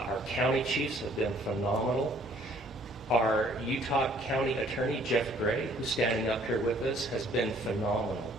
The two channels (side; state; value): both; normal; correlation 0.59